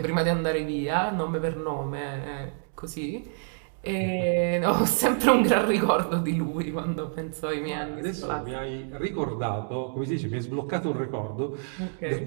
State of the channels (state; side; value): silent; left; digital silence